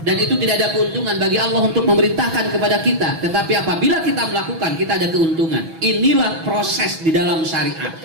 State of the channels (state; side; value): late; left; 6.1 ms